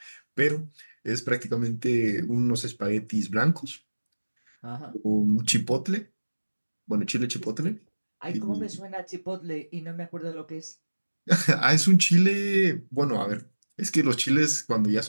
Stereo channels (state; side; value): inverted; both; correlation -1.00